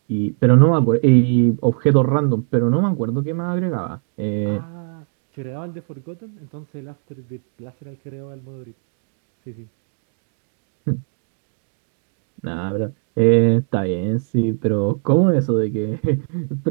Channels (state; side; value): silent; left; digital silence